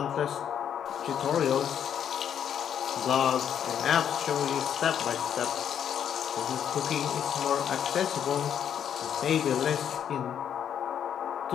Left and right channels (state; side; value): quieter; right; 8.9 dB